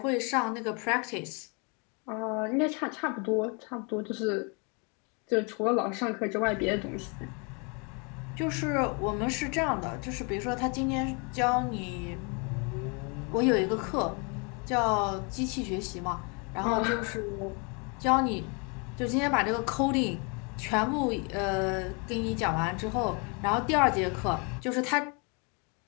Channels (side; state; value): right; quieter; 33.6 dB